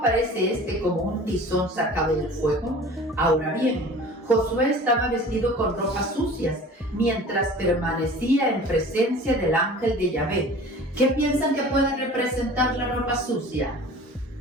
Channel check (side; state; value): both; normal; correlation 0.43